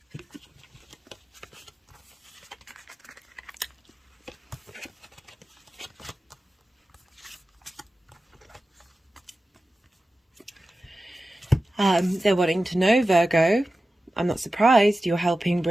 They're wanting to know, Virgo, I'm not surprised, you're helping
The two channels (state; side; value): normal; both; correlation 0.94